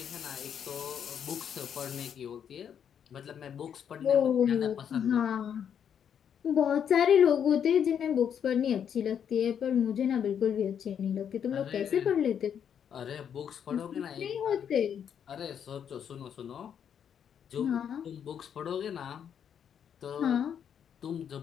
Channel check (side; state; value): right; quieter; 8.3 dB